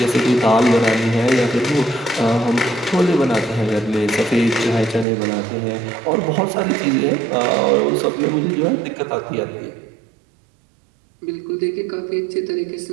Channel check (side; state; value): left; drops out; at 5.1 s